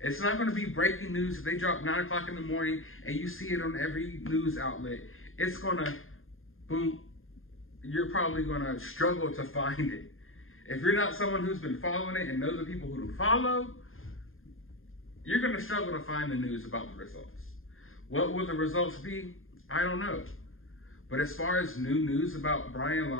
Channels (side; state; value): right; late; 0.60 ms